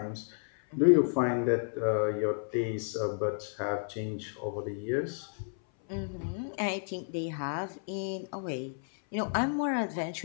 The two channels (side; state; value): right; silent; 57 dB below the other